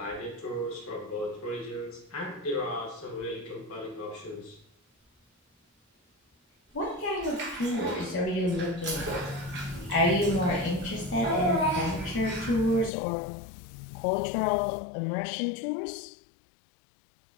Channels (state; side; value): drops out; right; at 12.9 s